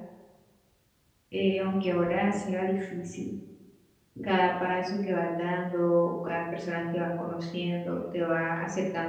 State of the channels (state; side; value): identical; both; correlation 1.00